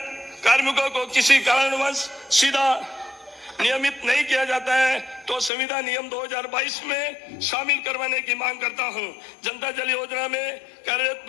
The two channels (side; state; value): right; drops out; at 5.5 s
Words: कार्मिकों को किसी कारणवश सीधा नियमित नहीं किया जाता है तो संविदा नियम 2022 में शामिल करवाने की मांग करता हूं। जनता जल योजना में कार्यरत